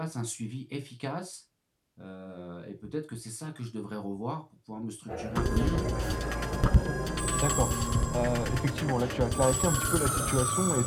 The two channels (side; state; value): both; identical; correlation 1.00